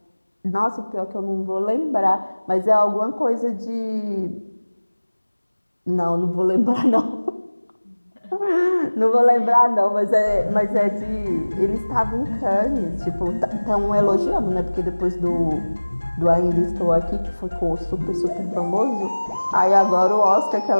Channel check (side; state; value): both; inverted; correlation -1.00